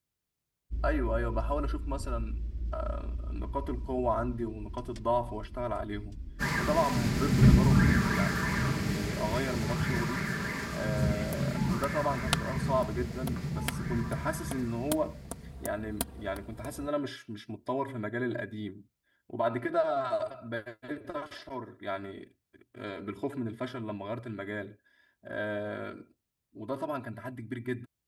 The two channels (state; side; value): identical; both; correlation 1.00